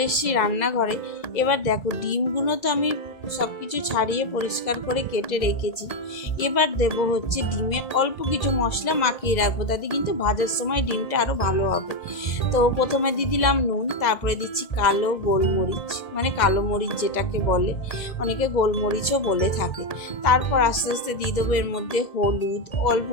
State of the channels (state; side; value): late; right; 2.0 ms